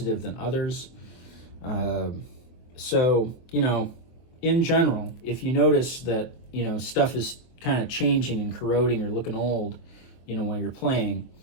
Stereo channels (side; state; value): right; late; 24 ms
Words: than others. So, you know, in general, if you notice that, you know, stuff is kind of changing and corroding or looking old, you know, while you're playing,